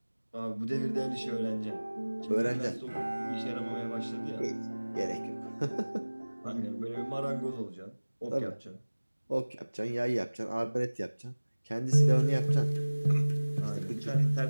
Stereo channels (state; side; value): inverted; both; correlation -1.00